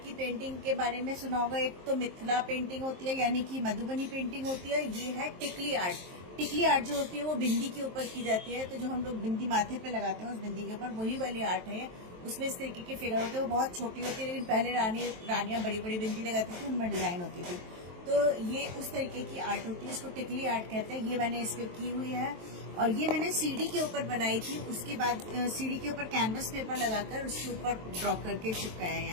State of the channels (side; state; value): left; late; 23 ms